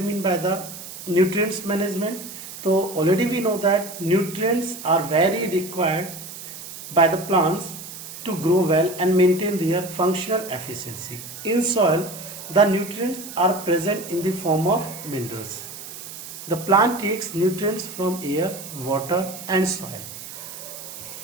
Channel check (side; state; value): right; noise; hiss, 12 dB below the sound